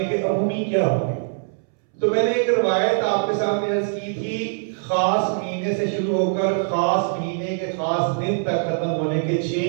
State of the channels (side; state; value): left; silent; 64 dB below the other